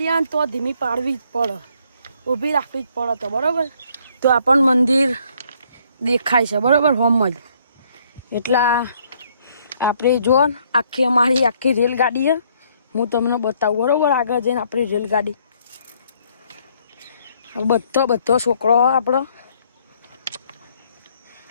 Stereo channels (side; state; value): both; inverted; correlation -0.66